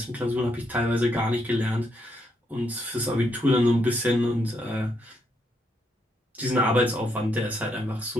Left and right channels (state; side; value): normal; both; correlation 0.77